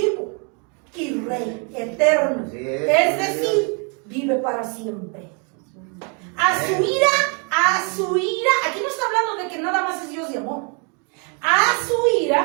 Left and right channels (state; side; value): quieter; left; 36.3 dB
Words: y Rey eterno. Así Es decir, vive para siempre. A su ira, aquí no está hablando de que nada más es Dios de amor. A su